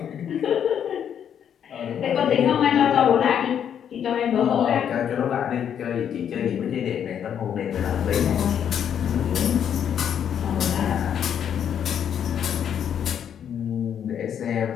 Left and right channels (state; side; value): quieter; right; 8.8 dB